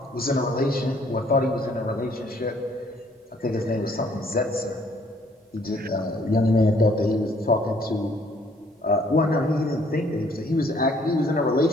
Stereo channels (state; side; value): normal; both; correlation 0.62